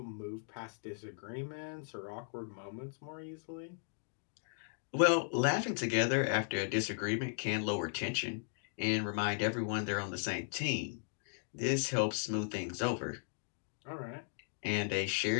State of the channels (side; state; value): right; silent; digital silence